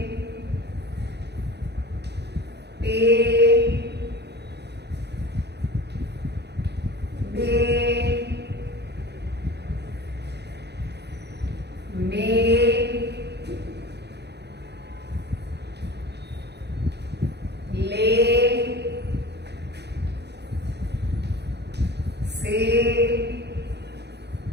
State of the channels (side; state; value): left; late; 0.49 ms